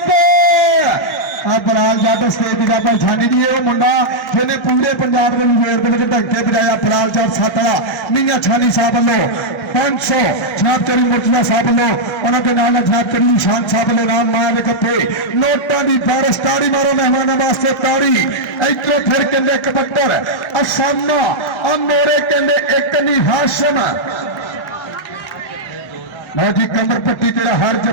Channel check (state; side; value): normal; both; correlation -0.06